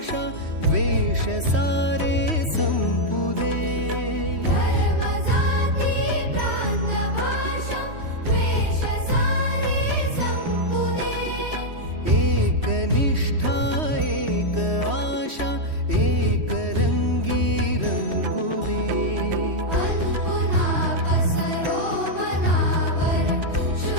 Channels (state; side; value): late; left; 3.1 ms